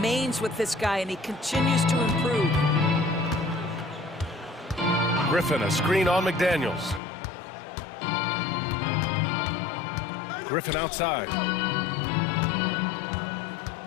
with this guy, and he continues to improve. Griffin, a screen on McDaniels. Griffin outside.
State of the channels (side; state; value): right; drops out; at 7.0 s